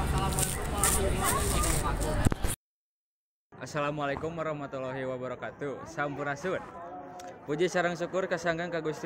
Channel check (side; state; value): both; identical; correlation 1.00